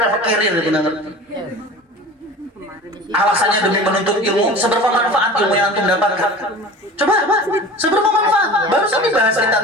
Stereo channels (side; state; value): both; normal; correlation 0.38